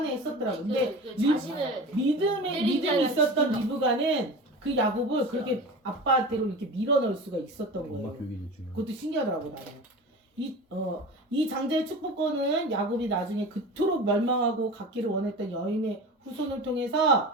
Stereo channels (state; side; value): normal; both; correlation 0.33